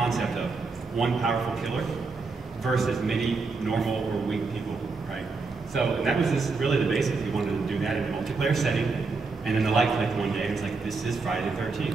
of one powerful killer versus many normal or weak people, right? So that was really the basics. We wanted to do that in a multiplayer setting, and then the light clicked one day, and it's like, this is Friday the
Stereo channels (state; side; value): quieter; left; 4.3 dB